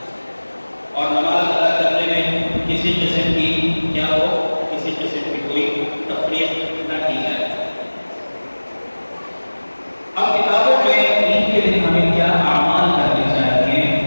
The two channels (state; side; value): inverted; both; correlation -1.00